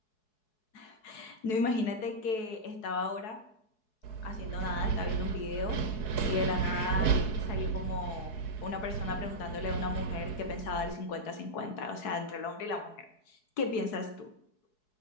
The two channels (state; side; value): late; right; 4.7 ms